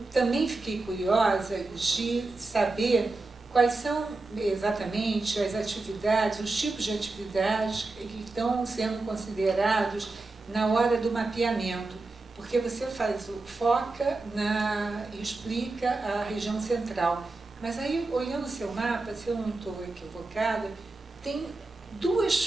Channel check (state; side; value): quieter; left; 3.3 dB